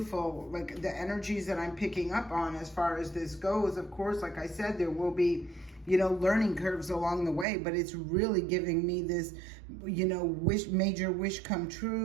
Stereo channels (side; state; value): left; drops out; at 7.5 s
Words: like the energies that I'm picking up on as far as this goes. Of course, like I said, there will be, learning curves along the way, but it's really giving me this, major wish come